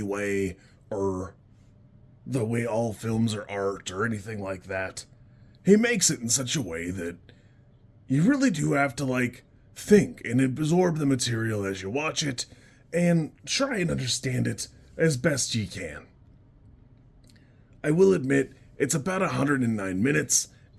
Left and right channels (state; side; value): identical; both; correlation 1.00